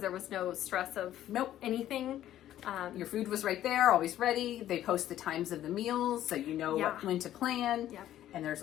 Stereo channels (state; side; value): quieter; right; 12.5 dB